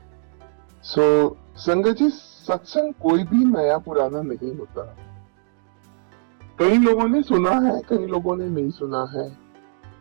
संगत जी, सत्संग कोई भी नया पुराना नहीं होता। कई लोगों ने सुना है, कई लोगों ने नहीं सुना है।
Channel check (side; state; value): left; silent; 63 dB below the other